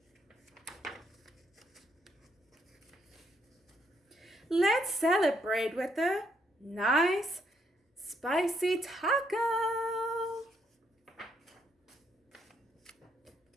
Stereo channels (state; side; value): normal; both; correlation 0.73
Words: Let's celebrate with a nice spicy taco.